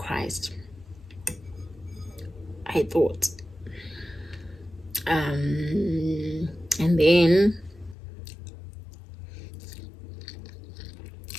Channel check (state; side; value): drops out; right; at 8.0 s